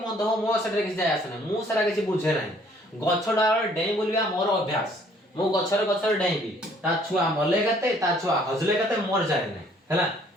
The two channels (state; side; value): normal; both; correlation 0.60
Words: हो मो सेटा किछ जाय आसे नाही मु सेटा किछ बुझे नाही गछ डाळ डेई बोलिया मोर अभ्यास मु गछर डेईबी ता छुआ मले गते ता छुआ हजले गते मोर जाय नाही हैला